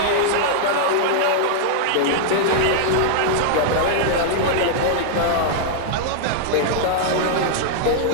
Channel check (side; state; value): both; different; correlation -0.01